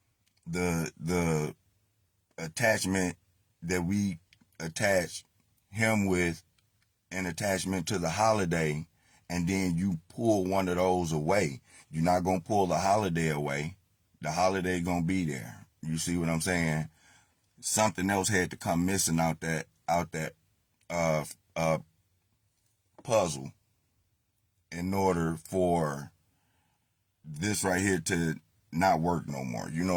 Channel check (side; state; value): both; identical; correlation 1.00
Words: The attachment that we attach him with, an attachment to the holiday, and then you pull one of those away. You're not going to pull the holiday away. The holiday going to be there. You see what I'm saying? Something else had to come missing out that puzzle in order for this right here to not work no more. You